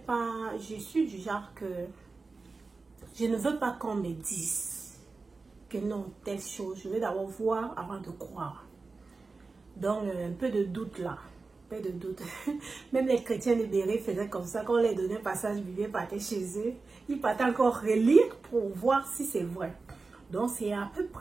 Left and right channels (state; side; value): quieter; left; 4.0 dB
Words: suis du genre que je ne veux pas qu'on me dise que non, telle chose. Je veux d'abord voir avant de croire. Donc, un peu de doute là. Un peu de doute. Même les chrétiens de Béret faisaient comme ça. Quand on leur donnait un passage biblique, ils partaient chez eux. Ils partaient encore relire pour voir si c'est vrai. Donc, c'est à peu